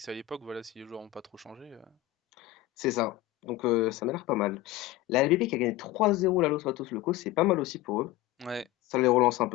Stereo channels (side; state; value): right; quieter; 16.5 dB